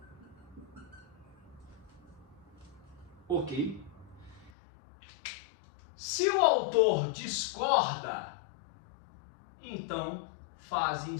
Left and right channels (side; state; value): right; drops out; at 4.5 s